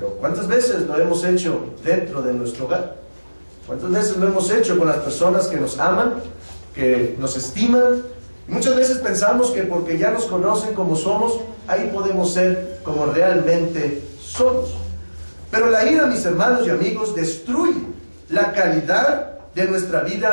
¿cuántas veces lo hemos hecho dentro de nuestro hogar? ¿Cuántas veces lo hemos hecho con las personas que nos aman, que nos estiman? Y muchas veces pensamos que porque ya nos conocen como somos, ahí podemos ser como realmente somos. Pero la ira, mis hermanos y amigos, destruye la calidad de nuestra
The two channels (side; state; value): both; inverted; correlation -1.00